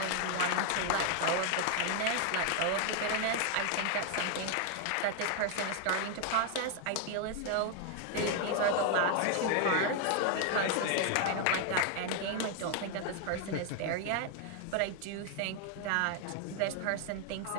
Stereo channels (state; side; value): different; both; correlation 0.01